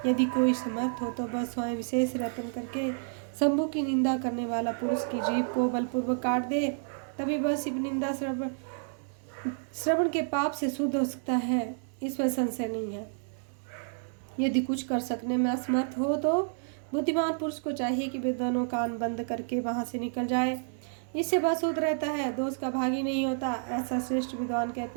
यदि कोई समर्थ हो तो बस स्वयं विशेष रतन करके शंभु की निंदा करने वाला पुरुष की जीभ को बलपूर्वक काट दे, तभी बस शिव निंदा श्रवण के पाप से शुद्ध हो सकता है, इसमें संशय नहीं है। यदि कुछ कर सकने में असमर्थ हो तो बुद्धिमान पुरुष को चाहिए कि वे दोनों कान बंद करके वहां से निकल जाए, इससे बस शुद्ध रहता है, दोष का भागी नहीं होता, ऐसा श्रेष्ठ विद्वान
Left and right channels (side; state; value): left; silent; 58 dB below the other